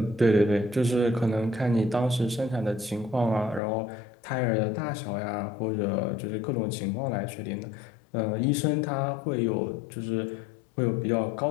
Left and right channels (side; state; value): right; drops out; at 3.6 s